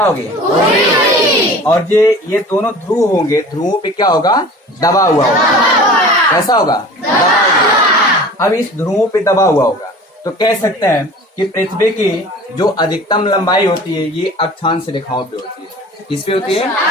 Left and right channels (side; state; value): both; normal; correlation 0.42